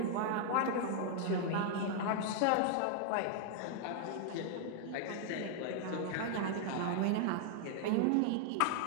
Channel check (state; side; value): different; both; correlation 0.00